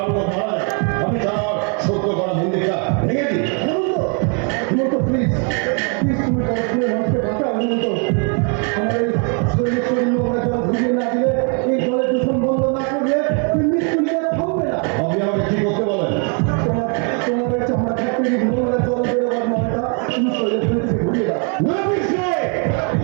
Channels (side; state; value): left; quieter; 39.0 dB